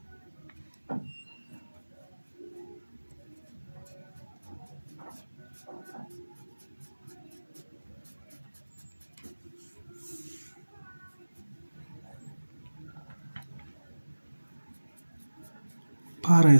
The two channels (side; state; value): both; inverted; correlation -1.00